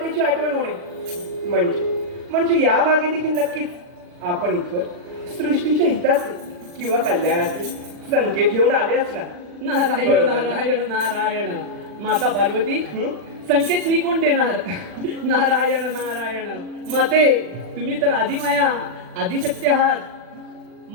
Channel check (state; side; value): late; left; 40 ms